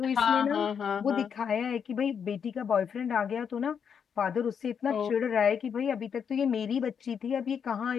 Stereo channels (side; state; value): right; quieter; 7.2 dB